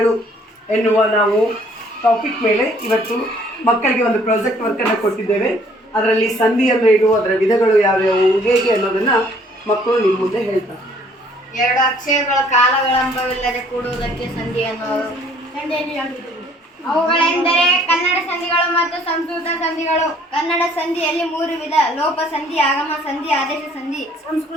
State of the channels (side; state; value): both; normal; correlation 0.59